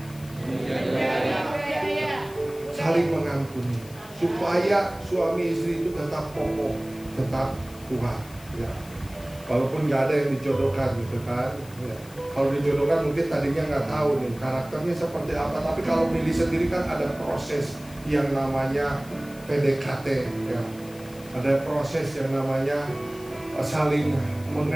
Saling mengampuni supaya suami istri itu tetap kokoh, tetap kuat ya. Walaupun nggak ada yang dijodohkan gitu kan ya. Kalau dijodohkan mungkin tadinya nggak tahu nih karakternya seperti apa, tapi kalau milih sendiri kan ada proses yang namanya PDKT ya. Ada proses yang namanya saling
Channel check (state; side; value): noise; left; hiss, 21 dB below the sound